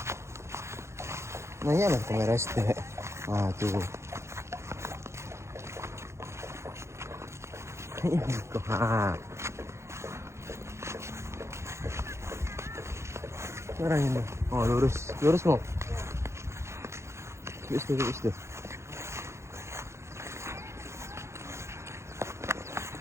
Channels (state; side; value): late; left; 0.13 ms